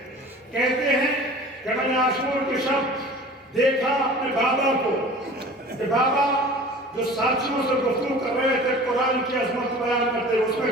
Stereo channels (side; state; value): both; normal; correlation 0.42